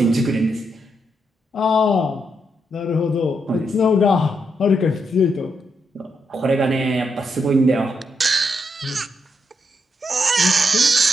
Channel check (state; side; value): normal; both; correlation 0.81